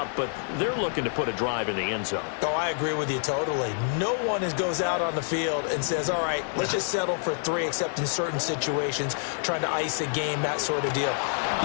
but they're looking to put a drive in the end zone. Oh, I agree with you totally. No one goes out on the field and says, all right, let's just settle for 3, except in certain situations, trying to ice a game, that sort of deal.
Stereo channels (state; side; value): silent; right; digital silence